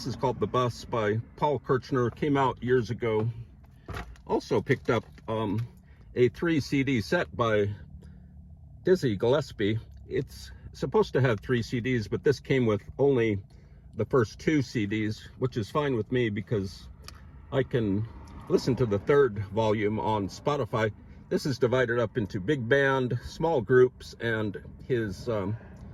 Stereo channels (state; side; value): identical; both; correlation 1.00